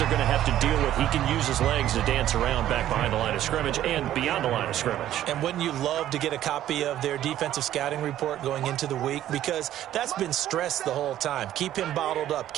going to have to deal with. He can use his legs to dance around back behind the line of scrimmage and beyond the line of scrimmage. And wouldn't you love to get a copy of their defensive scouting report going into the week? Because that's been stressed the whole time. Keep him bottled up.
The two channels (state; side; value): quieter; left; 12.4 dB